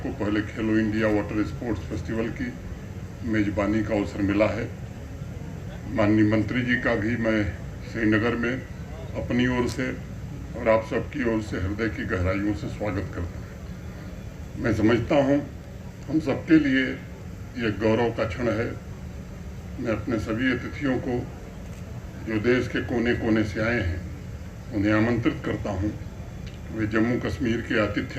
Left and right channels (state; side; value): identical; both; correlation 1.00